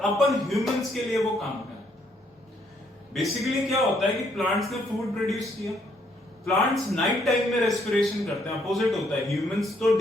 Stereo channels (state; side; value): normal; both; correlation 0.70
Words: अपन ह्यूमंस के लिए वो काम करते हैं। बेसिकली क्या होता है कि प्लांट्स ने फूड प्रोड्यूस किया, प्लांट्स नाइट टाइम में रेस्पिरेशन करते हैं, अपोजिट होता है। ह्यूमंस तो